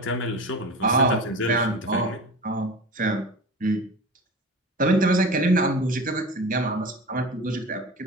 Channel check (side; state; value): both; normal; correlation 0.32